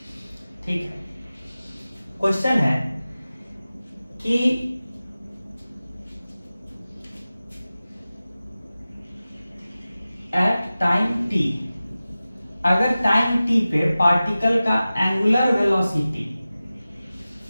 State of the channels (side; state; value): both; inverted; correlation -0.96